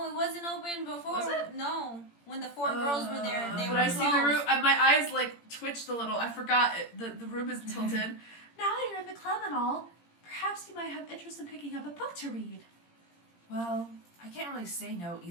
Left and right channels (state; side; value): late; right; 17 ms